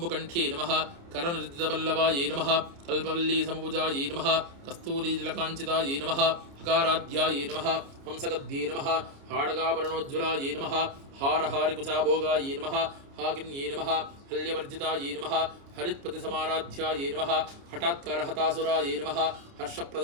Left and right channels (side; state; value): left; late; 29 ms